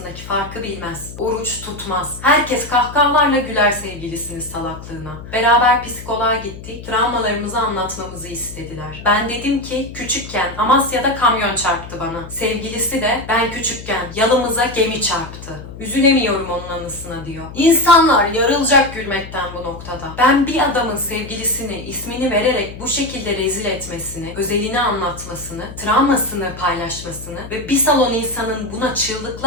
farkı bilmez. Oruç tutmaz. Herkes kahkahalarla güler sevgilisinin salaklığına. Beraber psikoloğa gittik. Travmalarımızı anlatmamızı istediler. Ben dedim ki küçükken Amasya'da kamyon çarptı bana. Sevgilisi de ben küçükken yalımıza gemi çarptı. Üzülemiyorum onun anısına diyor. İnsanlar yarılacak gülmekten bu noktada. Ben bir adamın sevgilisini ismini vererek bu şekilde rezil etmesini, özelini anlatmasını, travmasını paylaşmasını ve bir salon insanın buna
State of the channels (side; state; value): left; noise; hum, 13 dB below the sound